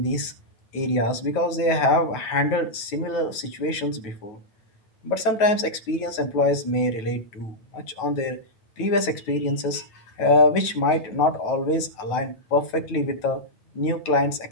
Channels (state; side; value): late; right; 9.2 ms